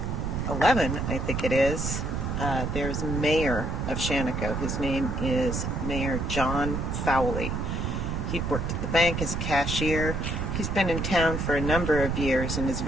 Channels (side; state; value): right; noise; rumble, 2 dB below the sound